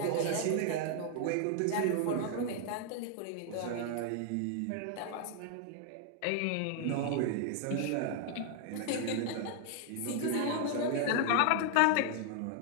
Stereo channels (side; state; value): both; different; correlation 0.00